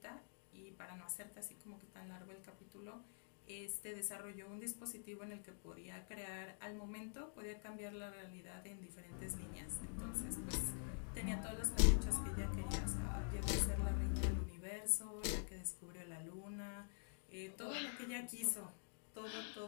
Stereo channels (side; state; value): right; silent; digital silence